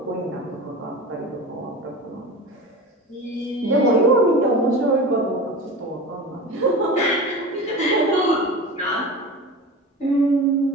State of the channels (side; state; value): both; normal; correlation 0.31